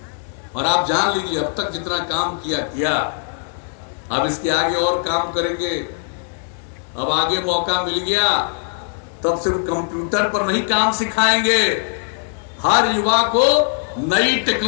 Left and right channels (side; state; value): right; silent; 66 dB below the other